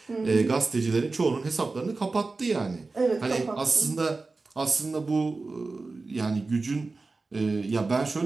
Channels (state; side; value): quieter; left; 3.7 dB